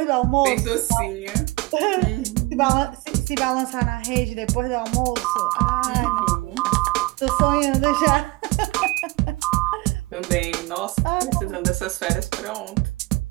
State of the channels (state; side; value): quieter; left; 23.4 dB